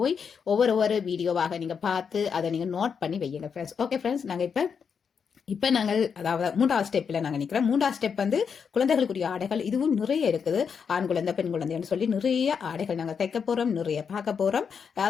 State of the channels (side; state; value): right; quieter; 6.5 dB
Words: போய் ஒவ்வொரு வீடியோவாக நீங்க பார்த்து அதை நீங்க நோட் பண்ணி வையுங்க ஃப்ரெண்ட்ஸ். ஓகே ஃப்ரெண்ட்ஸ், நாங்க இப்ப நாங்கள் அதாவது மூன்றாவது ஸ்டெப்ல நாங்கள் நிற்கிறோம். மூன்றாவது ஸ்டெப் வந்து குழந்தைகளுக்குரிய ஆடைகள். இதுவும் நிறைய இருக்குது. ஆண் குழந்தை, பெண் குழந்தைன்னு சொல்லி நிறைய ஆடைகள் நாங்கள் தைக்க போறோம், நிறைய பார்க்க போறோம்.